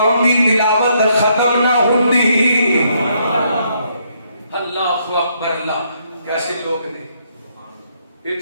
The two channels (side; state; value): both; inverted; correlation -0.72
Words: اللہ اکبر اللہ کیسے لوگ نے